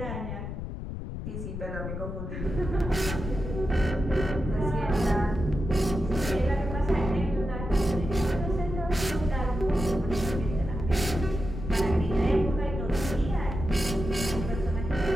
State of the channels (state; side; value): noise; left; rumble, 6 dB below the sound